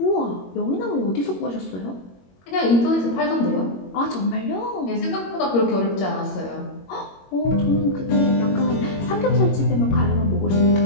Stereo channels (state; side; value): late; right; 21 ms